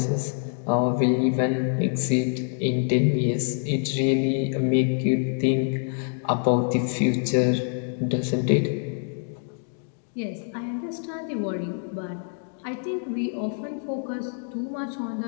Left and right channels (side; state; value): right; silent; 59 dB below the other